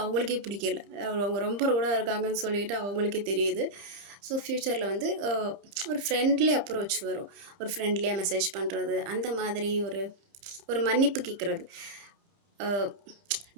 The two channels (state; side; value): late; left; 30 ms